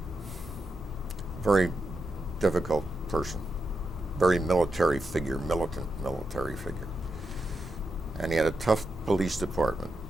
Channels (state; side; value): normal; both; correlation 0.86